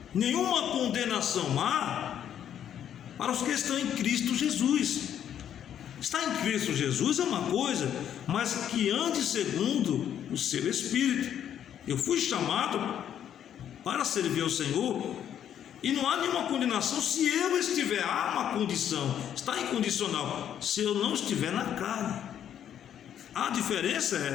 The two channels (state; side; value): quieter; right; 9.8 dB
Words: Nenhuma condenação há para os que estão em Cristo Jesus. Estar em Cristo Jesus é uma coisa, mas que ande segundo o seu Espírito. Eu fui chamado para servir ao Senhor, e não há nenhuma condenação se eu estiver. Há uma condição, está incondicional, se eu não estiver na carne. A diferença